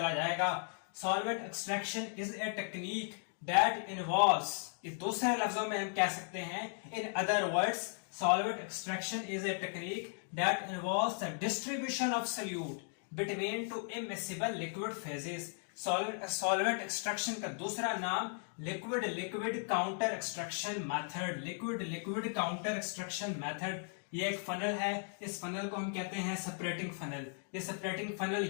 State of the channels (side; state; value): right; silent; 53 dB below the other